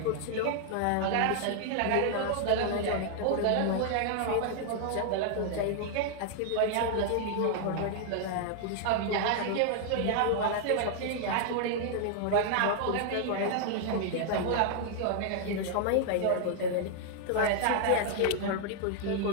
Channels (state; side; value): different; both; correlation 0.00